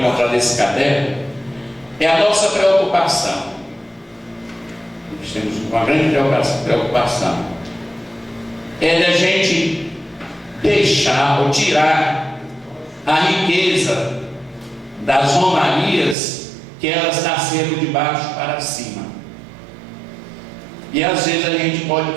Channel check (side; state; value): left; drops out; at 16.2 s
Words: nesse caderno, é a nossa preocupação. Nós temos uma grande preocupação. É da gente deixar ou tirar a riqueza das romarias, que elas nasceram de baixo para cima. E às vezes a gente pode